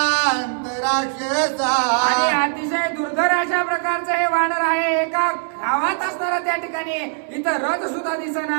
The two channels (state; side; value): silent; left; digital silence